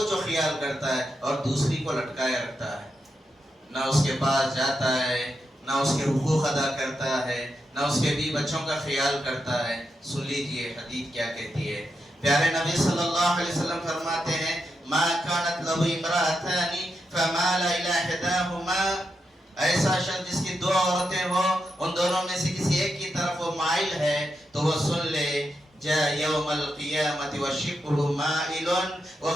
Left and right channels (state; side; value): normal; both; correlation 0.85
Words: وہ خیال کرتا ہے اور دوسری کو لٹکائے رکھتا ہے، نہ اس کے پاس جاتا ہے، نہ اس کے حقوق ادا کرتا ہے، نہ اس کے بیوی بچوں کا خیال کرتا ہے. سن لیجئے حدیث کیا کہتی ہے. پیارے نبی صلی اللہ علیہ وسلم فرماتے ہیں ما كانت له امرأتان فمال الى احداهما، ایسا شخص جس کی 2 عورتیں ہو ان دونوں میں سے کسی ایک کی طرف وہ مائل ہے تو وہ سن لے جاء یوم القیامت وشقه مائل، وہ